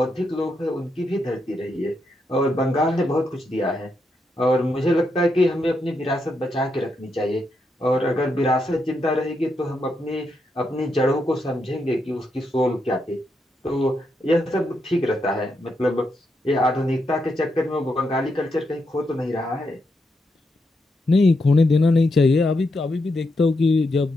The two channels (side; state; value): both; normal; correlation 0.82